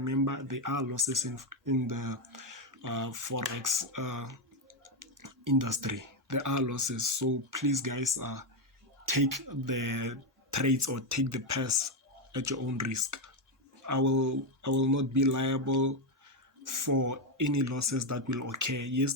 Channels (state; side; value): normal; both; correlation 0.06